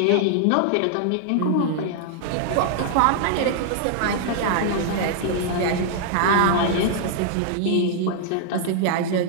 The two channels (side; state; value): both; different; correlation -0.01